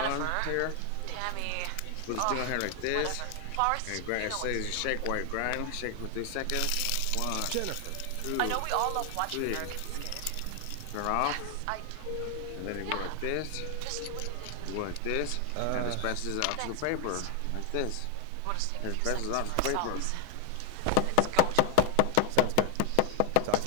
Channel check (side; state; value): both; different; correlation 0.00